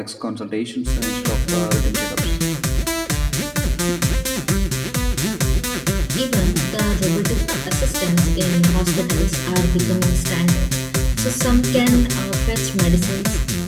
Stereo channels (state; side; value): identical; both; correlation 1.00